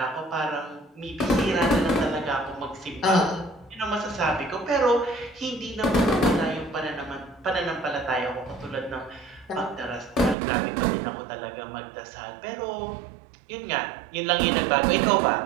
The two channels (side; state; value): left; drops out; at 10.4 s